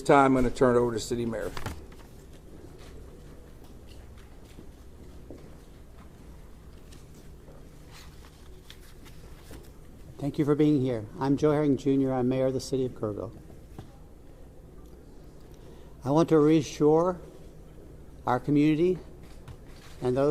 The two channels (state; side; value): identical; both; correlation 1.00